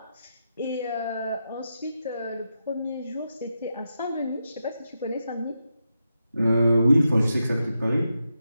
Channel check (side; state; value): both; inverted; correlation -0.87